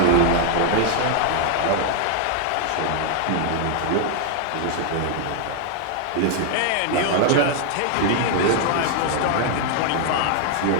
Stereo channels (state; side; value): different; both; correlation 0.00